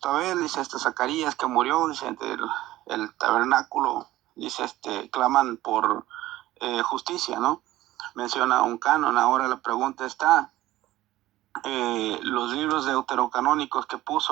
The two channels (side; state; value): left; quieter; 15.9 dB